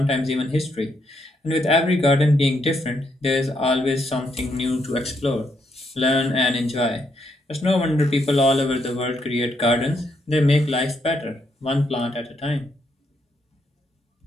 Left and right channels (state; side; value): normal; both; correlation 0.77